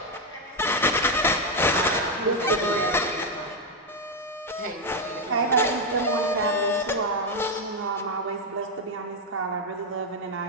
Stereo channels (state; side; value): normal; both; correlation 0.05